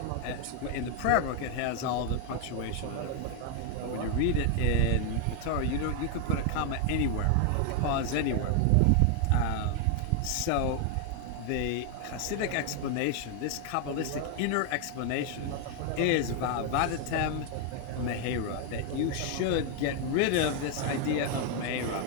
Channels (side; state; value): both; different; correlation 0.01